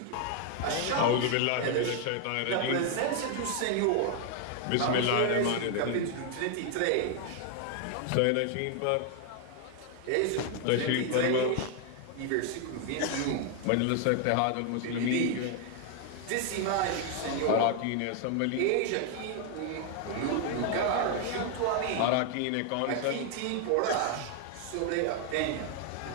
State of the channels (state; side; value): different; both; correlation 0.01